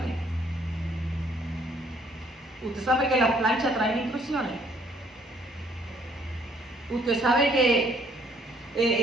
Usted sabe que las planchas traen instrucciones. Usted sabe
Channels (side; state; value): both; normal; correlation 0.64